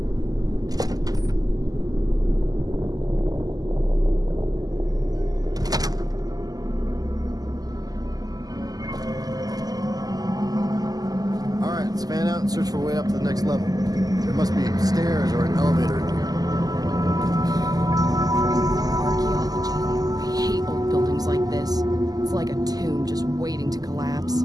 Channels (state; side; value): late; left; 0.18 ms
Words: Fan out and search for a way up to the next level. There must be stairs or an elevator in here. Archaeology. I hate old buildings like this. It's like a tomb just waiting to collapse.